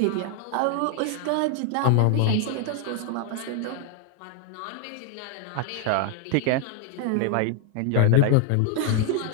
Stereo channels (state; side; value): different; both; correlation 0.00